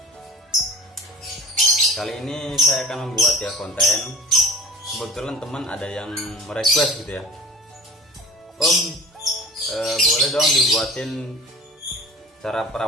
kali ini saya akan membuat ya konten. Kebetulan teman ada yang merequest gitu ya. Om, boleh dong dibuatin cara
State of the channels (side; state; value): both; normal; correlation 0.38